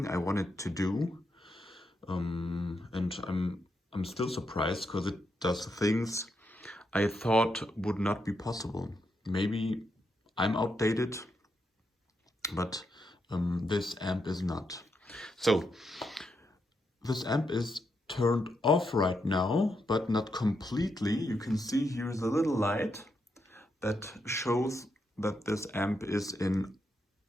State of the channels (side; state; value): both; normal; correlation 0.82